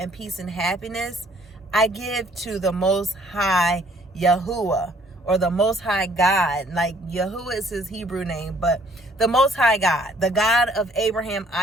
peace and happiness I give to the Most High Yahuwah, or the Most High God. Like, Yahuwah is his Hebrew name, but the Most High God, the God of Abraham,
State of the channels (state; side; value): normal; both; correlation 0.61